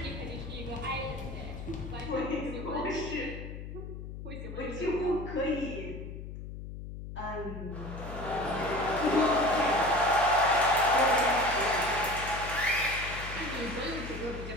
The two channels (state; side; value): noise; left; hum, 9 dB below the sound